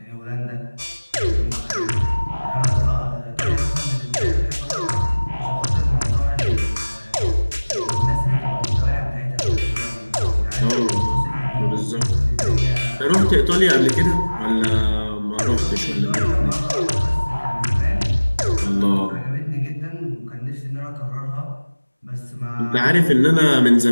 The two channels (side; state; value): both; inverted; correlation -1.00